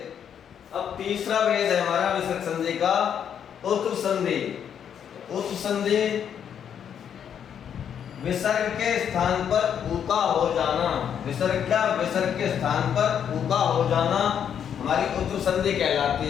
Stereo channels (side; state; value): right; quieter; 8.5 dB